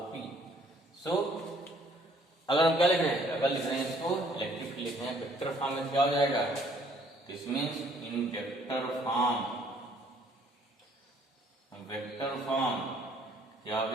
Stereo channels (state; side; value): normal; both; correlation 0.62